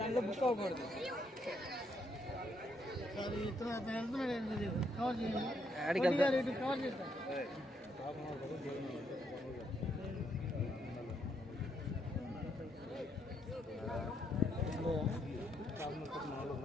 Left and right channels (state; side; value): normal; both; correlation 0.75